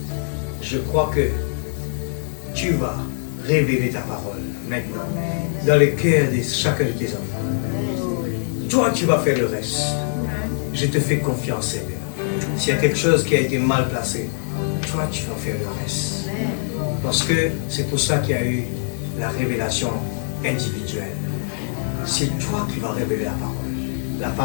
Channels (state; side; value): silent; right; digital silence